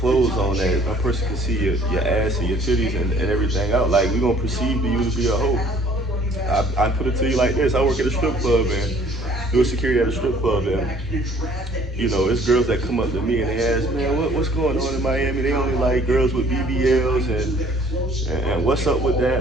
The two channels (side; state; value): both; normal; correlation 0.57